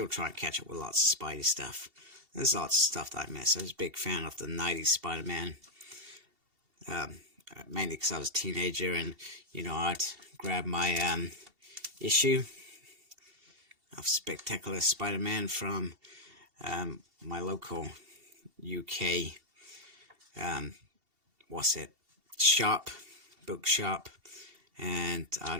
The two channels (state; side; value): late; left; 2.7 ms